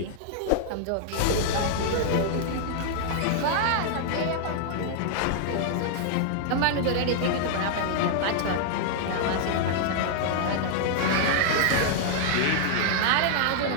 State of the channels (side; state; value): both; different; correlation -0.01